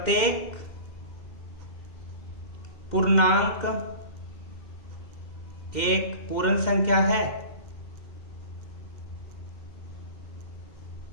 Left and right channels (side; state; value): right; late; 2.1 ms